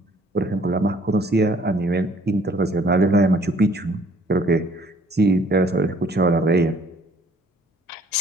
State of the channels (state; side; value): normal; both; correlation 0.58